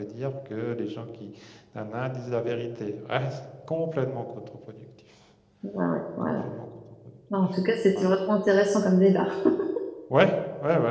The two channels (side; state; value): both; identical; correlation 1.00